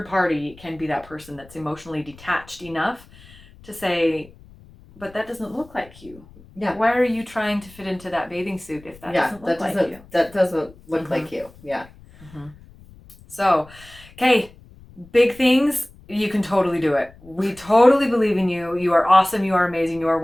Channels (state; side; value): noise; left; rumble, 23 dB below the sound